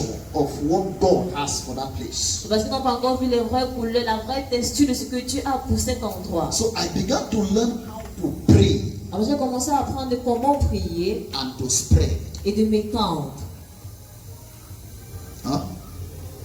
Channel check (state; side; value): identical; both; correlation 1.00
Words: of what God has for that place. Parce qu'ils n'ont pas encore vu les vraies couleurs, la vraie texture de ce que Dieu a pour cet endroit. So I began to learn how to pray Alors j'ai commencé à apprendre comment prier and to spread. et de m'étendre. Huh?